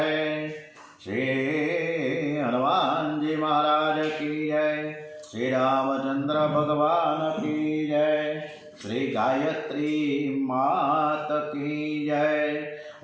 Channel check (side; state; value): both; identical; correlation 1.00